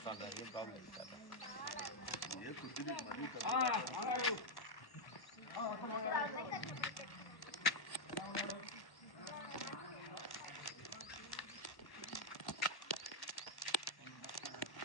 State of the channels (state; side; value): late; right; 1.1 ms